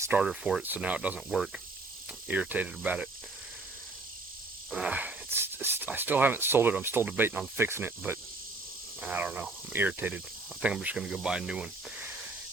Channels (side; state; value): left; quieter; 3.3 dB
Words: for it, so now it doesn't work. I'm irritated about it. I still haven't sold it. I'm still debating on fixing it, but I don't know. I'm irritated. I think I'm just going to go buy a new one.